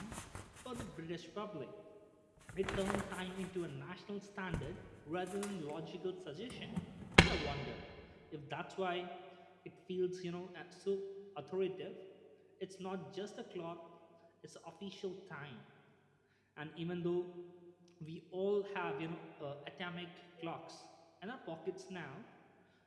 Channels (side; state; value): both; identical; correlation 1.00